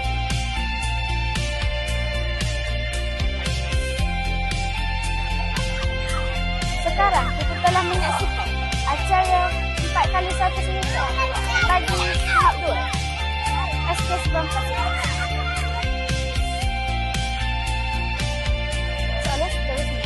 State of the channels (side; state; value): both; identical; correlation 1.00